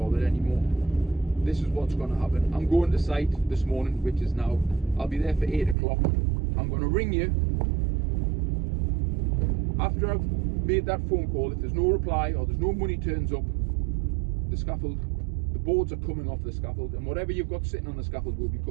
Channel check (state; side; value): drops out; left; at 5.8 s